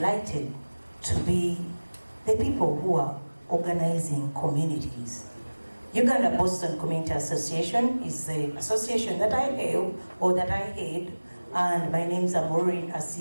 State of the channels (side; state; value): both; inverted; correlation -1.00